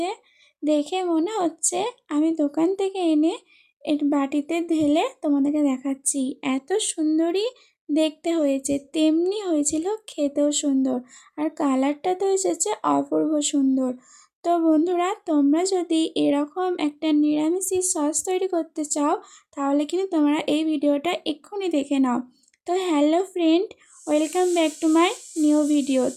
দেখে মনে হচ্ছে আমি দোকান থেকে এনে এর বাটিতে ঢেলে তোমাদেরকে দেখাচ্ছি। এত সুন্দরই দেখতে হয়েছে, তেমনি হয়েছিল খেতেও সুন্দর। আর কালারটা তো এসেছে অপূর্ব সুন্দর। তো বন্ধুরা, তোমরা যদি এরকম একটা নিরামিষি সস তৈরি করতে চাও, তাহলে কিন্তু তোমরা এই ভিডিওটা এক্ষুনি দেখে নাও। তো hello friend, welcome back to my new video.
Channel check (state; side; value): identical; both; correlation 1.00